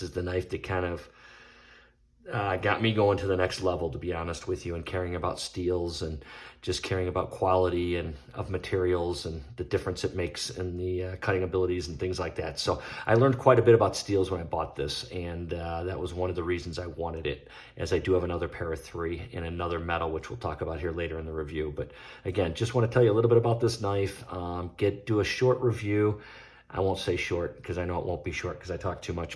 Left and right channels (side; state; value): both; identical; correlation 1.00